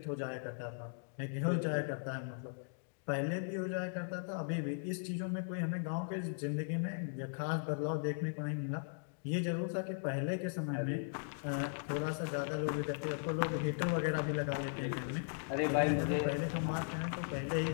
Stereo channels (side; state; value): right; silent; digital silence